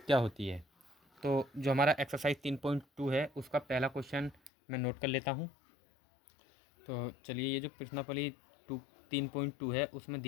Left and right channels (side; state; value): right; drops out; at 4.5 s